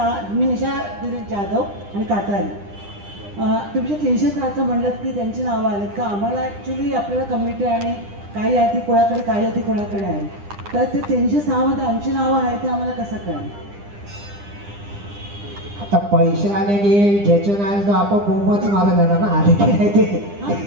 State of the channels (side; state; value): left; late; 9.9 ms